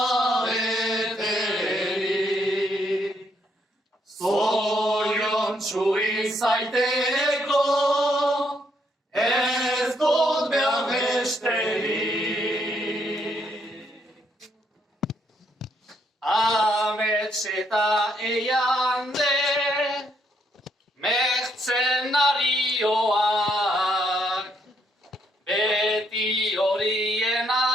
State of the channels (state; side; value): normal; both; correlation 0.73